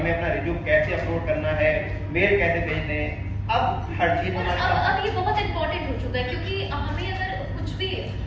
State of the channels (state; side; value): identical; both; correlation 1.00